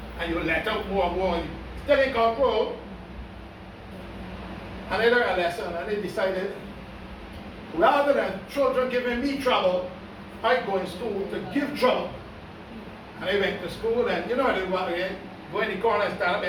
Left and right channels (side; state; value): both; identical; correlation 1.00